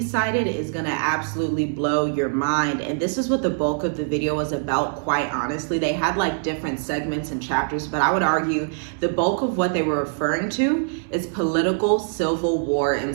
is going to absolutely blow your mind. And this is what the bulk of the video was about, quite honestly. They had like different segments and chapters, but I would argue the bulk of what they were referring to is political civil war in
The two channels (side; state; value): left; silent; 63 dB below the other